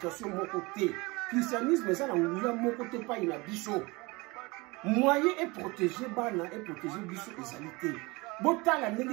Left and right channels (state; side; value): quieter; left; 24.6 dB